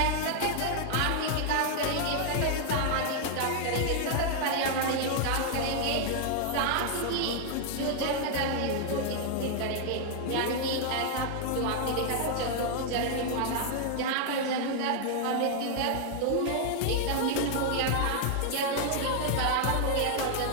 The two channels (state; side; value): different; both; correlation 0.00